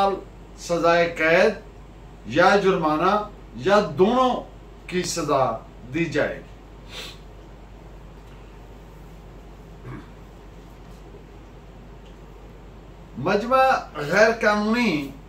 सजाए कैद या जुर्माना या दोनों की सजा दी जाएगी। मजमा गैर कानूनी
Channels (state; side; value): identical; both; correlation 1.00